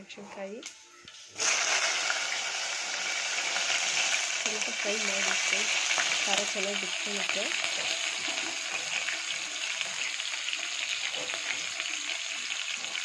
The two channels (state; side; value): identical; both; correlation 1.00